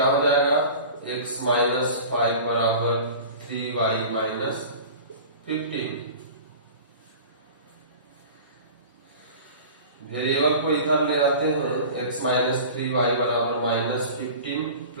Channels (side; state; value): both; inverted; correlation -0.38